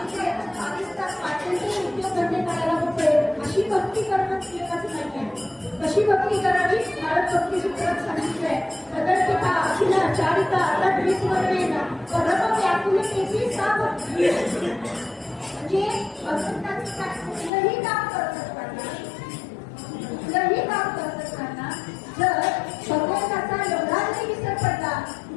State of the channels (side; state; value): right; drops out; at 17.5 s